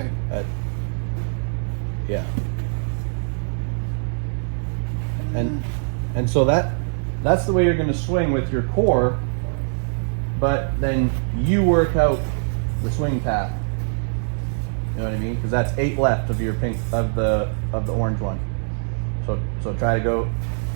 Yeah. And so that's the way you're going to swing with your core, but then you work out the swing path. You know what I mean? Because that's 8 left of your pink of the orange one. So try to go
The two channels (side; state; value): left; silent; digital silence